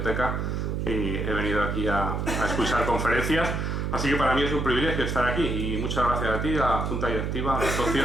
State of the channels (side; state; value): right; noise; hum, 1 dB below the sound